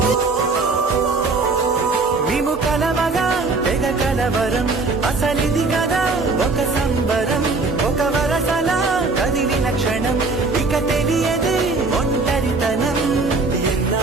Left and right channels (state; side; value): quieter; left; 3.8 dB